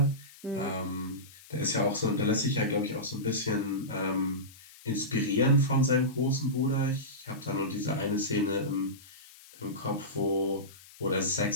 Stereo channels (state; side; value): noise; left; hiss, 22 dB below the sound